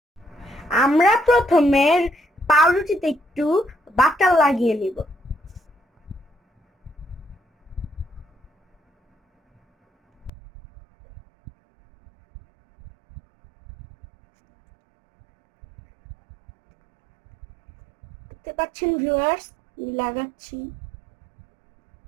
আমরা প্রথমে পাউরুটিতে একটু বাটার লাগিয়ে নিব। দেখতে পাচ্ছেন ভিউয়ার্স, আমি লাগাচ্ছি।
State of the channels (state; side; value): drops out; left; at 10.3 s